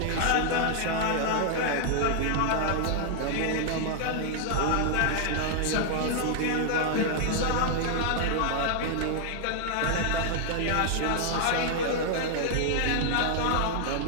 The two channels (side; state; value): both; different; correlation 0.00